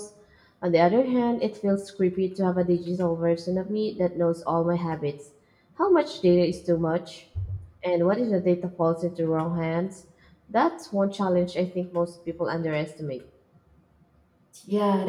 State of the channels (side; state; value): both; identical; correlation 1.00